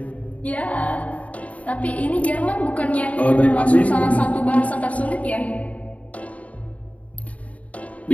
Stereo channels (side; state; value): right; late; 0.068 ms